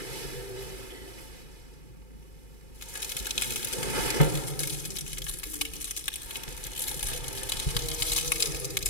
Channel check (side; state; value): right; late; 2.4 ms